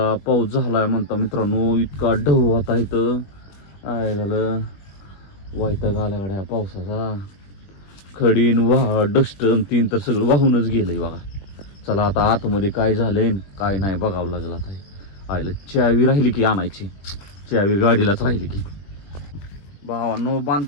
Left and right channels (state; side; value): late; right; 20 ms